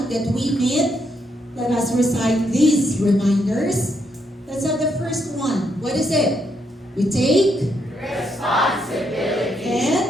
that we meet. Let us recite these reminders. Let's have the first one. What is it? We take responsibility.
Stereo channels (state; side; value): normal; both; correlation 0.77